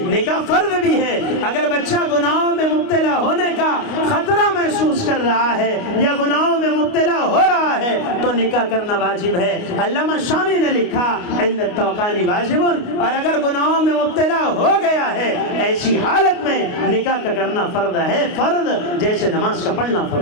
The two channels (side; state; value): right; late; 29 ms